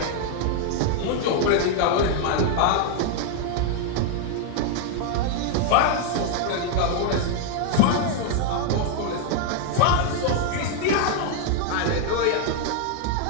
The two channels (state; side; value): different; both; correlation 0.00